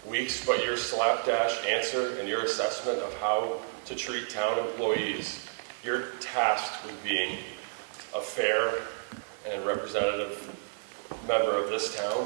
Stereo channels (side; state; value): left; silent; 57 dB below the other